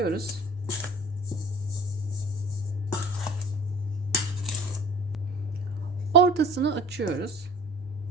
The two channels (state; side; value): normal; both; correlation 0.44